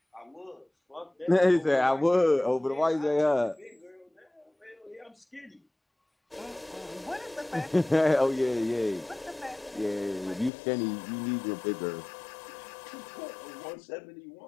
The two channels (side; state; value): right; drops out; at 10.5 s